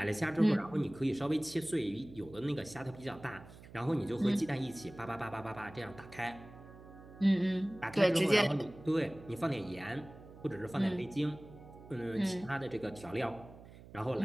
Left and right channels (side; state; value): right; noise; hum, 18 dB below the sound